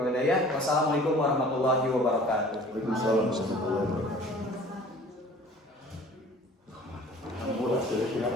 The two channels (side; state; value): both; normal; correlation 0.48